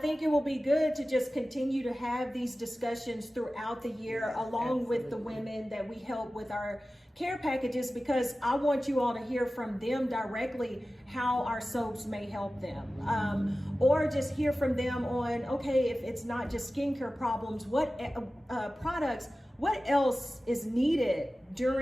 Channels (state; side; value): normal; both; correlation 0.95